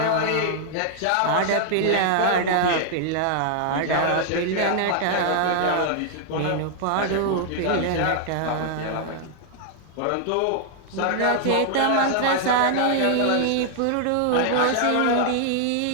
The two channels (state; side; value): different; both; correlation 0.00